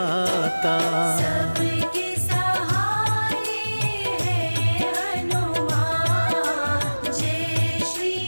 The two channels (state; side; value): inverted; both; correlation -1.00